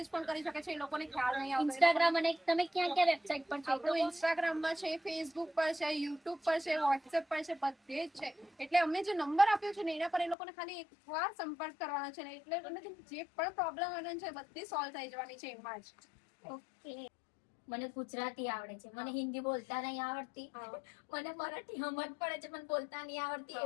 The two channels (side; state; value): right; drops out; at 10.4 s